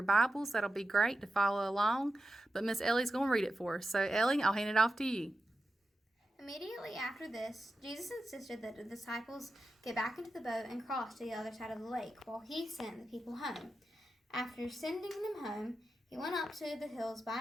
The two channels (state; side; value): normal; both; correlation 0.91